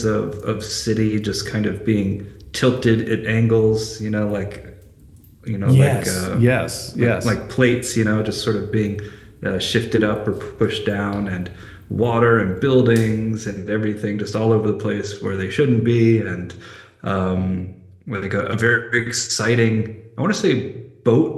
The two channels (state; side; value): identical; both; correlation 1.00